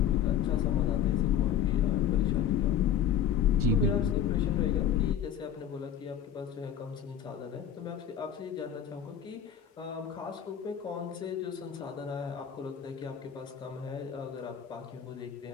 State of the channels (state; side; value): quieter; right; 8.7 dB